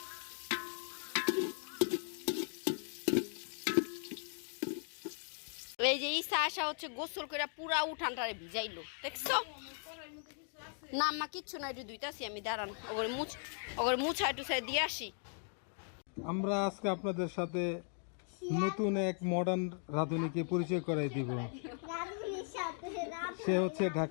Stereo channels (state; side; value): silent; right; 53 dB below the other